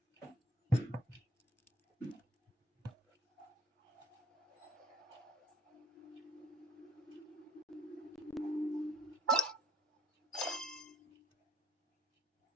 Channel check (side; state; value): both; normal; correlation 0.57